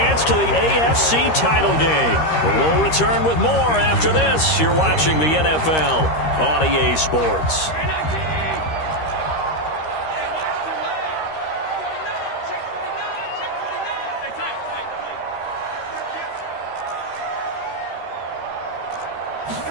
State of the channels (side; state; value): right; late; 13 ms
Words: to the AFC title game. We'll return with more after this. You're watching the NFL on EA Sports.